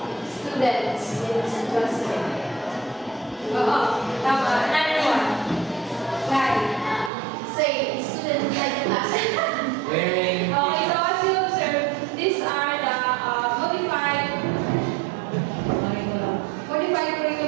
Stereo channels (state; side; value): drops out; left; at 7.1 s